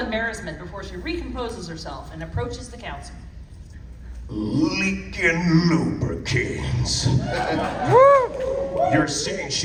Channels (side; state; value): both; identical; correlation 1.00